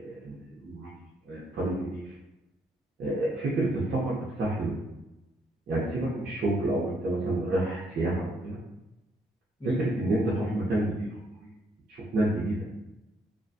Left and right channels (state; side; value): normal; both; correlation 0.72